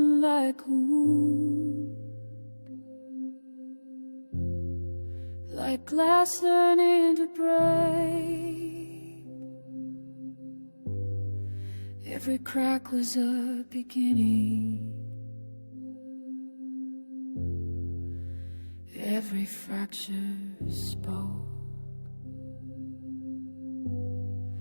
like a wound, like glass learning to break. Every crack was a beginning. Every fracture spoke.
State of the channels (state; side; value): inverted; both; correlation -1.00